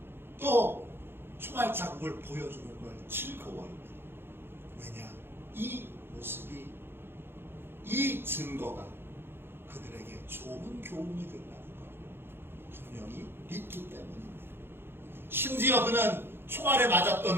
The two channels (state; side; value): late; left; 0.11 ms